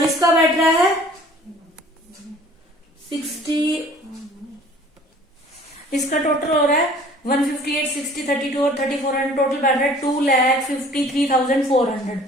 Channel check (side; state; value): both; normal; correlation 0.51